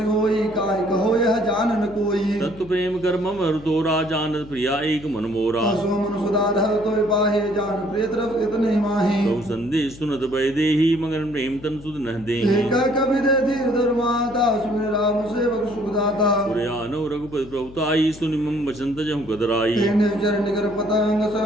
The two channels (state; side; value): noise; left; hum, 18 dB below the sound